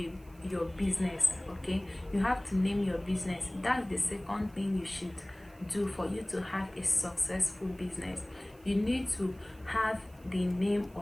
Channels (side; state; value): right; noise; hiss, 28 dB below the sound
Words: your business. Okay, you have to name your business. That's the second thing you should do for you to have a successful business. You need to have the name